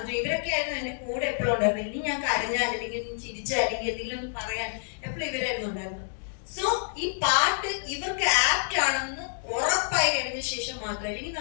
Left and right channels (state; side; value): silent; right; digital silence